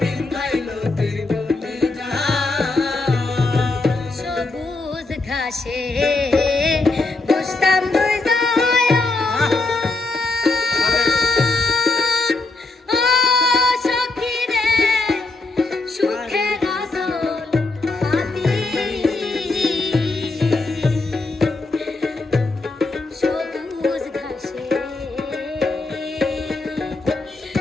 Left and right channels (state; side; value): quieter; right; 3.4 dB